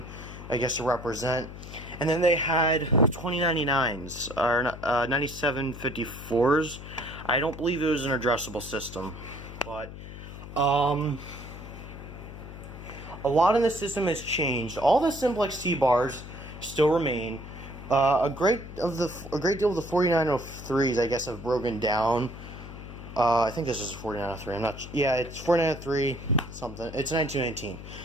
I guess, to represent. And then they had 2099s, or 9754s. I don't believe it was an addressable system, but a lot in the system has changed. All the simplex T-bars still remain. A great deal of the 4903s, I guess, have broken down. I think this is a 4903. I'm not. Yeah, it's 4903 something. It's 1919.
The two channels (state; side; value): noise; left; hum, 12 dB below the sound